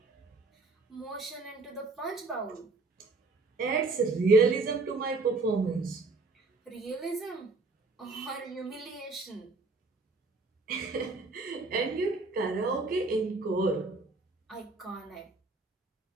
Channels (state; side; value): quieter; left; 3.5 dB